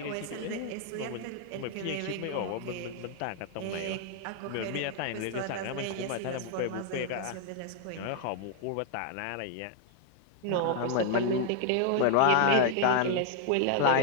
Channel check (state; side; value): different; both; correlation 0.00